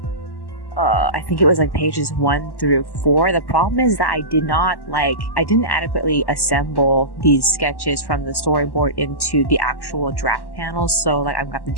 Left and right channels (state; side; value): late; right; 1.1 ms